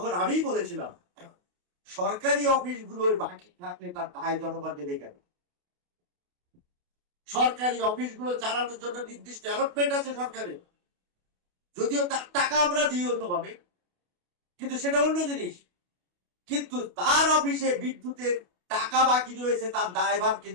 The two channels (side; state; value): left; late; 28 ms